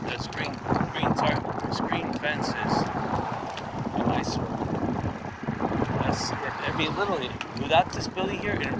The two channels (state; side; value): identical; both; correlation 1.00